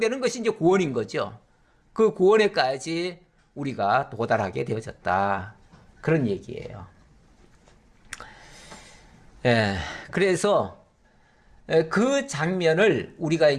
것이 이제 구원인 거죠. 그 구원에까지 우리가 도달하게 되어졌다. 그런 얘기예요. 예, 그래서 그 장면을 우리가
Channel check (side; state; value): both; identical; correlation 1.00